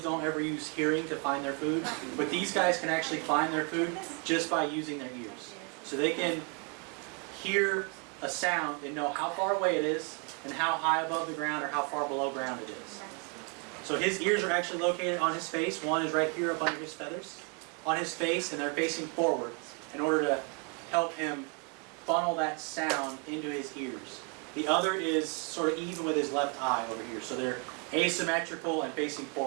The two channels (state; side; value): quieter; left; 35.7 dB